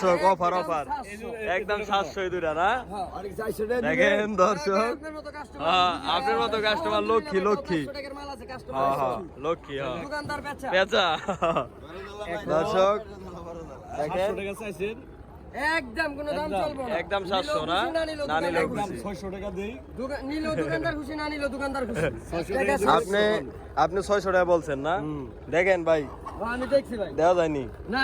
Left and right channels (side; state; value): both; identical; correlation 1.00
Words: অফার অফার একদম 700 এই দুইটা না? হ্যাঁ আর 400 টাকা দেখেন দর্শক, আপনার মতো কাস্টমার, হ্যাঁ আপনার মতো কাস্টমার লক্ষ্মী লক্ষ্মী। 500 টাকার মাল আছে হ্যাঁ কাস্টমার, হ্যাঁ লক্ষ্মী। হ্যাঁ দোকানদার বেচা পেঁচা। দর্শক দেখেন একদম কোনো দাম চলবে না, একদম 700 না? না নিলেও খুশি। 600 টাকা দেই, নিলেও দোকানদার খুশি, না নিলেও দোকানদার খুশি। আপনি 600 টাকা বলছেন না? দেখেন ভাই আমি দেখছি ভাই, দেওয়া যায়নি। না